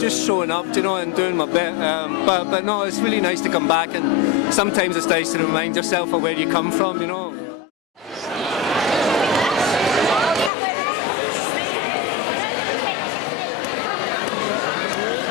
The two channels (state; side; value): drops out; right; at 10.5 s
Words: showing up, you know, and doing my bit. But no, it's really nice to come back, and sometimes it's nice to remind yourself of where you come from, you know.